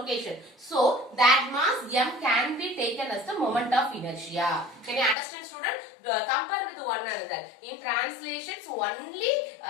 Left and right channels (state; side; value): drops out; right; at 5.2 s